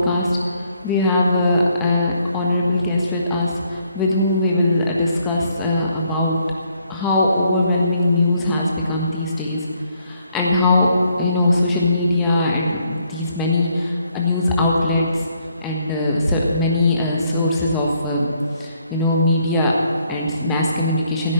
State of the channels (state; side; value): inverted; both; correlation -0.70